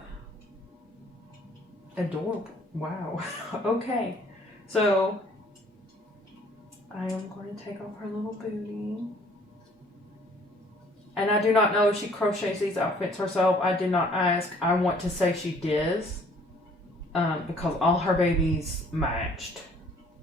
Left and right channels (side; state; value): both; normal; correlation 0.58